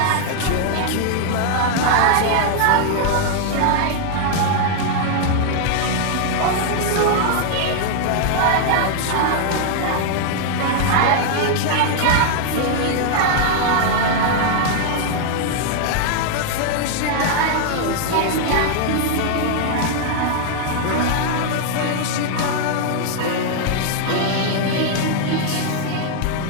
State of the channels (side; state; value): both; different; correlation 0.00